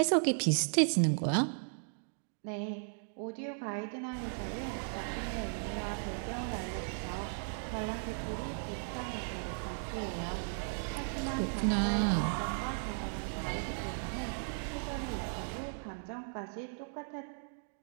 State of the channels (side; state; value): left; silent; digital silence